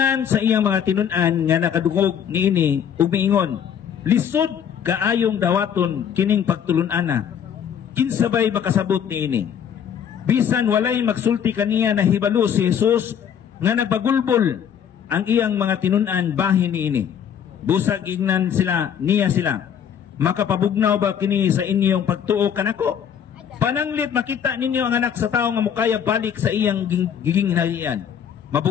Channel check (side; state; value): right; quieter; 8.4 dB